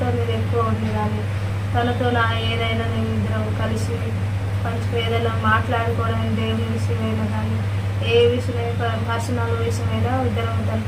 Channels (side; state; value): both; identical; correlation 1.00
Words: నేను ఎక్కువ ఉండేదాన్ని. తనతో ఏదైనా నేను ఇద్దరం కలిసి మంచిగా ఏదైనా మాట్లాడుకోవడం, దేవుని విషయమైనా కానీ ఏ విషయమైనా పర్సనల్ విషయమైనా ఇద్దరం